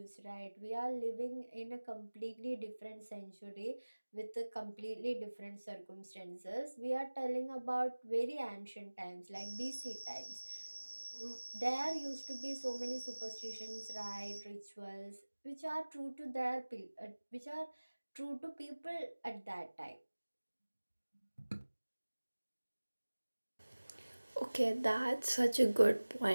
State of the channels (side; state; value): both; inverted; correlation -1.00